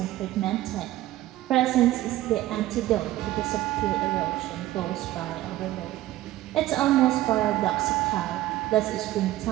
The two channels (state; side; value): quieter; left; 15.2 dB